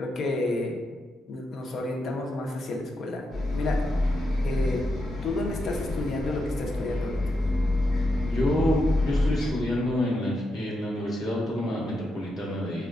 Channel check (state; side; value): normal; both; correlation 0.84